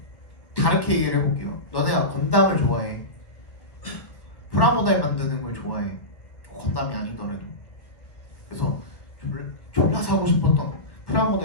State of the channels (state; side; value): late; right; 1.5 ms